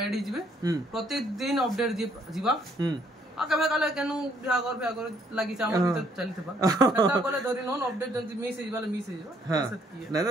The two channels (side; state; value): both; normal; correlation 0.67